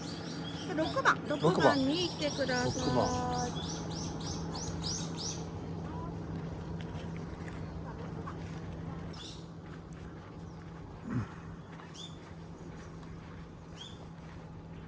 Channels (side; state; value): both; identical; correlation 1.00